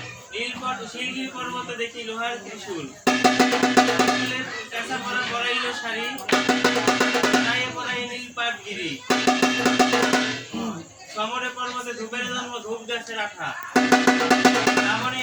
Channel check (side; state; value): both; identical; correlation 1.00